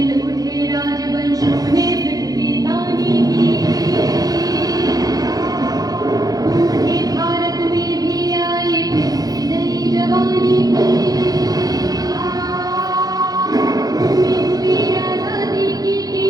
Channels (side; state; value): left; late; 0.18 ms